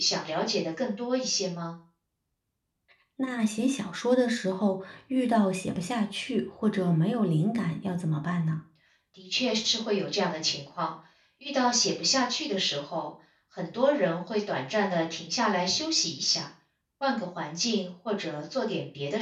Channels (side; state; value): both; identical; correlation 1.00